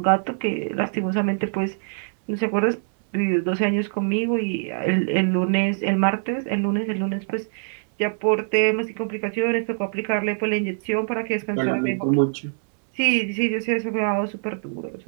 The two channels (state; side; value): silent; left; digital silence